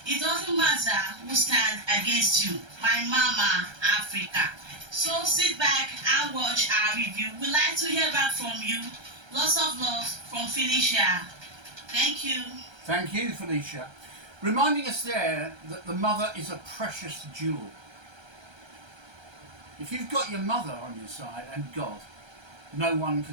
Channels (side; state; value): left; late; 1.3 ms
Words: it doesn't matter who stands against you. My Mama Africa. So sit back and watch our review. We'd like to hear back from you. Lots of love from Felicia. Thank you. Thank you, Felicia. Reminding us there that the mother is a precious jewel. If you've got your mother on your side and God, no one